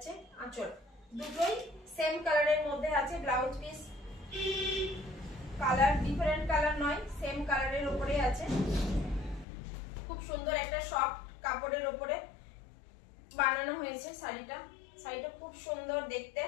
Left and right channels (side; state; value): right; drops out; at 9.5 s